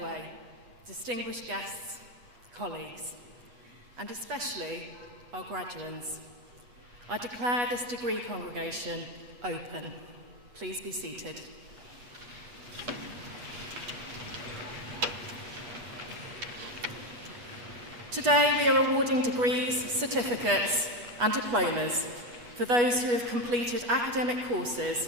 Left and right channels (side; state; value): left; late; 8.3 ms